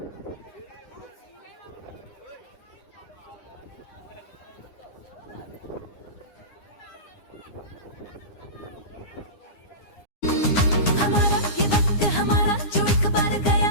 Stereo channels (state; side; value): late; right; 9.8 ms